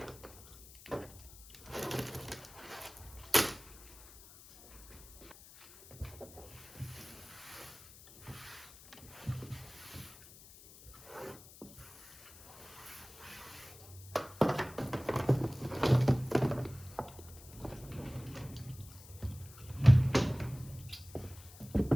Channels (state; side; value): noise; left; hiss, 19 dB below the sound